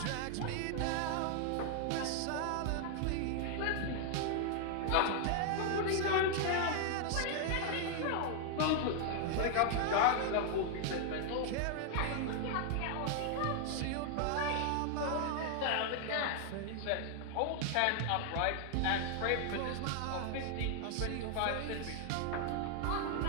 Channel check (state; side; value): different; both; correlation 0.00